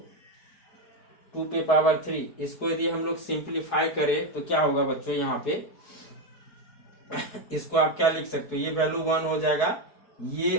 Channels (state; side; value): late; right; 4.7 ms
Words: 2 पे पावर 3, इसको यदि हम लोग सिंप्लीफाई करें तो क्या होगा बच्चों, यहाँ पे इसको आप क्या लिख सकते हो, ये वैल्यू 1 हो जाएगा, ये